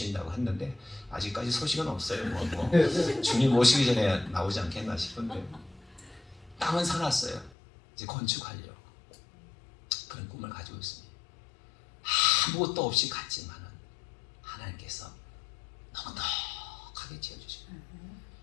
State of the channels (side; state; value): right; drops out; at 7.6 s